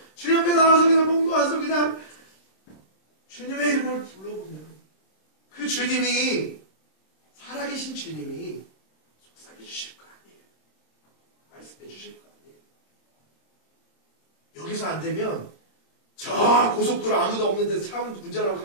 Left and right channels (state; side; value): late; right; 26 ms